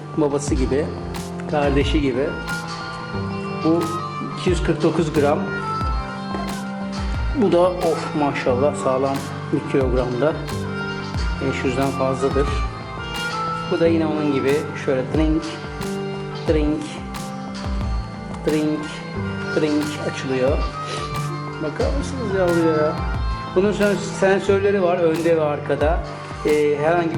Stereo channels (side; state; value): both; identical; correlation 1.00